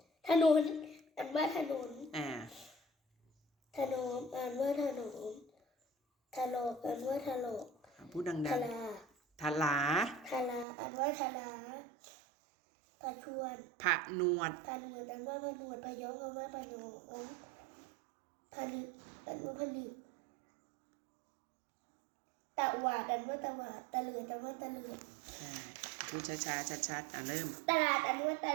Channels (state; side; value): drops out; left; at 10.7 s